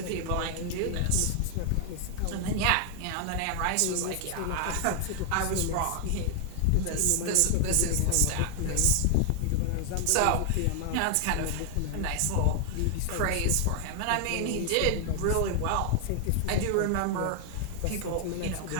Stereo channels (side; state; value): both; different; correlation 0.00